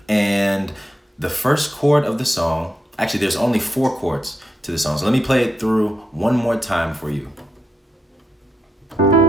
And the first chord of the song, actually there's only 4 chords to the song. So let me play it through one more time for you.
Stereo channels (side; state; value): both; normal; correlation 0.84